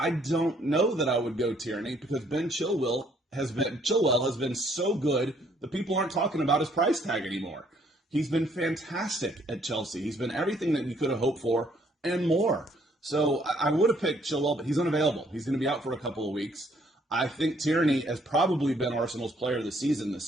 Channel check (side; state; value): both; normal; correlation 0.66